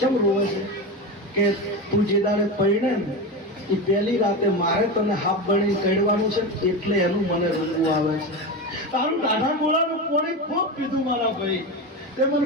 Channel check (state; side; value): normal; both; correlation 0.20